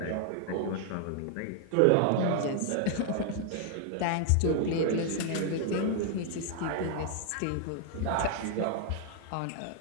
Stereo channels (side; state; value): both; different; correlation 0.00